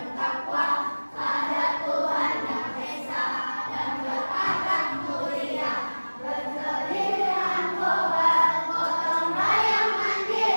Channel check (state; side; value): inverted; both; correlation -1.00